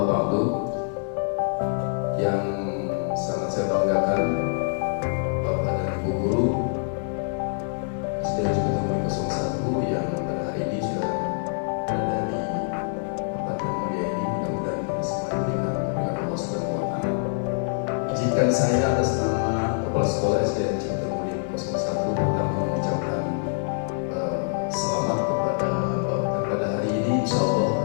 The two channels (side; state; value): right; silent; 61 dB below the other